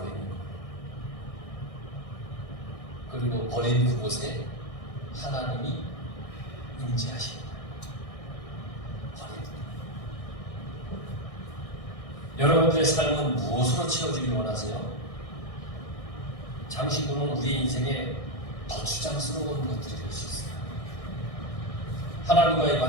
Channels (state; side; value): late; right; 1.6 ms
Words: 거예요. 그리고 버린 그곳에 하나님이 임재하십니다. 버리는 거예요. 여러분들의 삶은 무엇으로 채워지길 원하세요? 장신구는 우리의 인생에 거추장스러운 것들이 될 수 있어요. 하나님과의